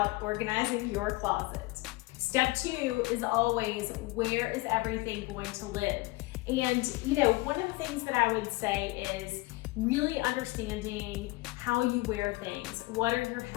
organizing your closet. Step 2 is always, where is everything going to live? And one of the things that I would say is really understanding how you wear things. What are your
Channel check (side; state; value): right; quieter; 22.3 dB